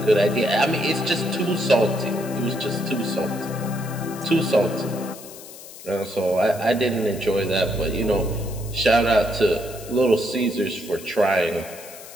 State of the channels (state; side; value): noise; left; hiss, 16 dB below the sound